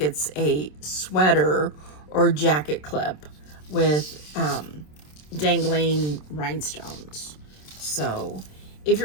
it's a sweater or jacket clip with dangling rhinestones. So if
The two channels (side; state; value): right; late; 27 ms